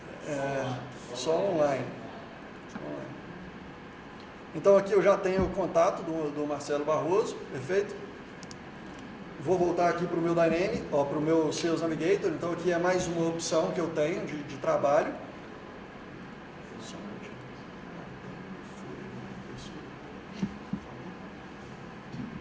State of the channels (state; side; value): identical; both; correlation 1.00